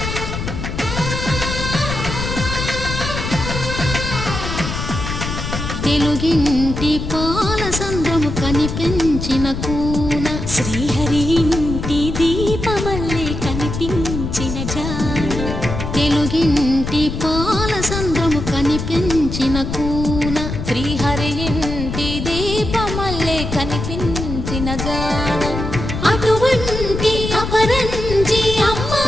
తెలుగింటి పాలసంద్రము కనిపించిన కూన శ్రీహరి ఇంటి దీపమల్లే కనిపించిన జాడ తెలుగింటి పాలసంద్రము కనిపించిన కూన శ్రీహరి ఇంటి దీపమల్లే కనిపించిన జాడ అటువంటి అపరంజి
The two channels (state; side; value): noise; left; rumble, 5 dB below the sound